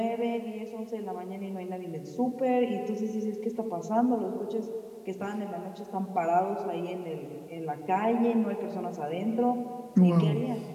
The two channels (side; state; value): both; identical; correlation 1.00